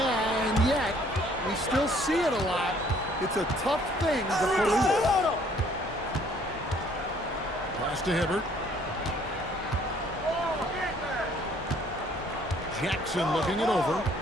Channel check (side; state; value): both; normal; correlation 0.60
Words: and yet, we still see it a lot. It's a tough thing to police. Pass to Hibbert. Jackson looking it over.